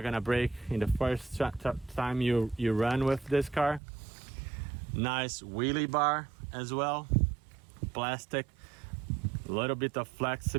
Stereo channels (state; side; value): drops out; left; at 3.8 s